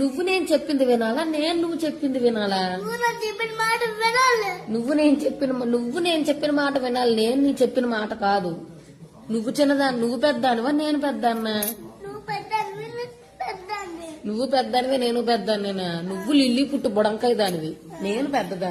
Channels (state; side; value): identical; both; correlation 1.00